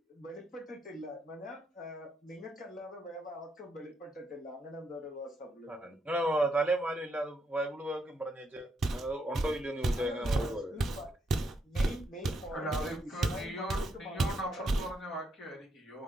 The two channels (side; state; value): both; normal; correlation 0.78